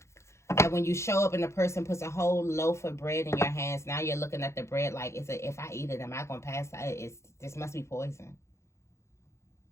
And when you show up and the person puts a whole loaf of bread in your hands, now you're looking at the bread like, if I eat it, am I going to pass out? This must be poison.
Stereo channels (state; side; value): late; right; 0.13 ms